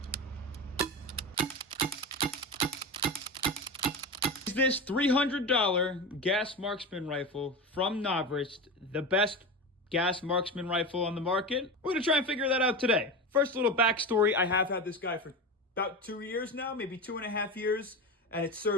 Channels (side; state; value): both; normal; correlation 0.24